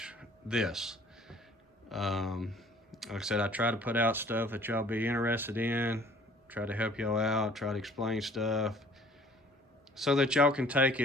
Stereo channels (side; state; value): both; normal; correlation 0.53